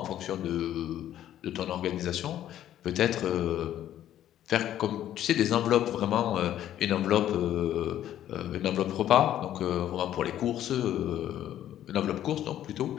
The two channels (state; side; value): quieter; right; 11.8 dB